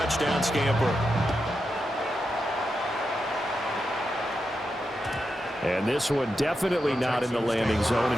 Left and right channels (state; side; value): normal; both; correlation 0.87